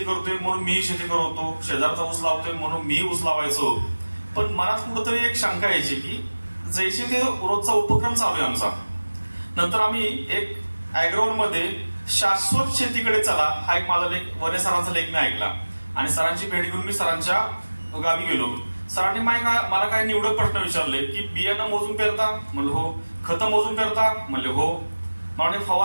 करतोय म्हणून मी शेती करतो, शेजारचा ऊस लावतोय म्हणून मी ऊस लावायचो. पण मनात कुठंतरी एक शंका यायची की जैसे ते रोजचा उपक्रम चालू आहे आमचा, नंतर आम्ही एक अॅग्रोवन मध्ये शाश्वत शेतीकडे चला हा एक माझा लेख, वने सरांचा लेख मी ऐकला आणि सरांची भेट घेऊन मी सरांच्या गावी गेलो. सरांनी मला काय निवडक प्रश्न विचारले की बियाणं मोजून पेरता? म्हणलं हो. खतं मोजून पेरता? म्हणले हो. म्हणजे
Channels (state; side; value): inverted; both; correlation -1.00